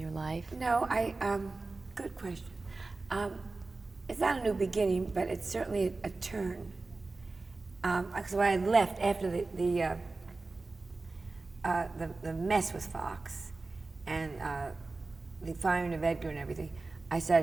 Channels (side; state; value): left; quieter; 3.5 dB